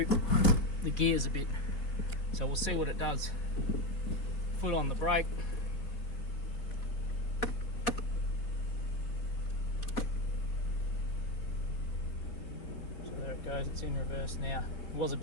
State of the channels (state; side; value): late; right; 4.5 ms